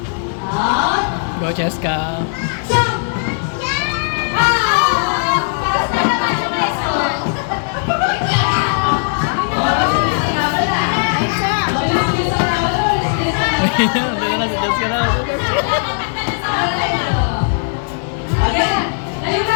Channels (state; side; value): silent; right; digital silence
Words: Go, Cheska. Hindi na si Cheska na.